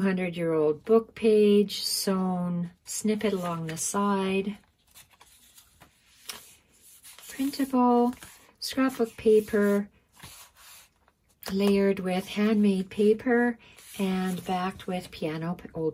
book page. Sewn snippet along the side. Printable. Scrapbook paper. Layered with handmade paper and backed with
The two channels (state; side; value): identical; both; correlation 1.00